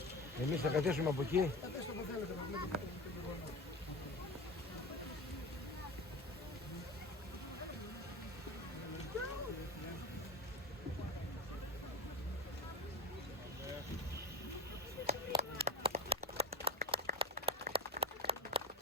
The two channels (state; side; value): normal; both; correlation 0.26